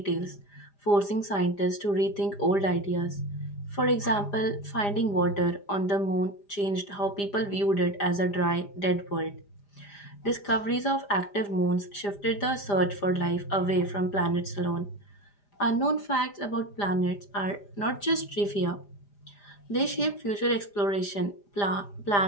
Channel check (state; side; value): late; right; 4.9 ms